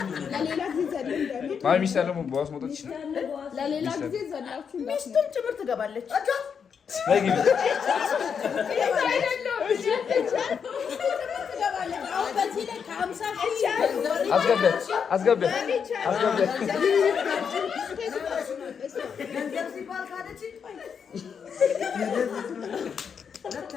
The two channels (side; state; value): right; quieter; 6.8 dB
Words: ማሚ ይስተለ በዋስ መጣች ለሌላ ጊዜ ዘላችሁ ሚስቱም ጭምር ትገባለች አይግቢ አስገበት